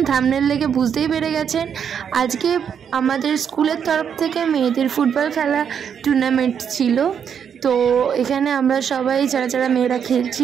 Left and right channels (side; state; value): left; quieter; 7.8 dB